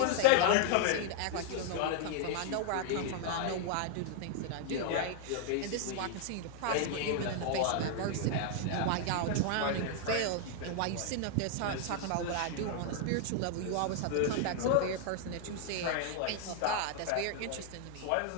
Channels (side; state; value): both; different; correlation 0.00